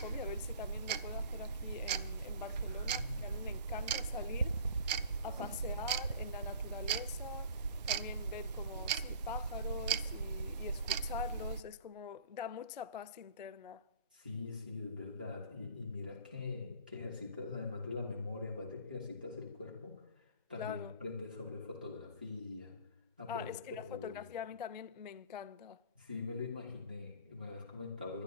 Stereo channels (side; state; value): both; inverted; correlation -0.48